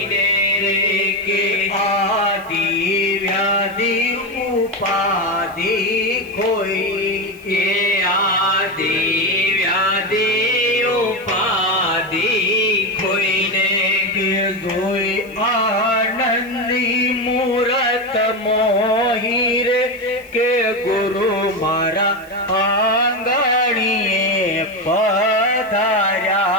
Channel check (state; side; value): noise; right; hiss, 25 dB below the sound